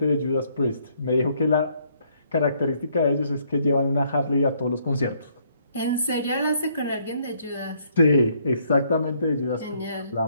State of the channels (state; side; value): inverted; both; correlation -0.68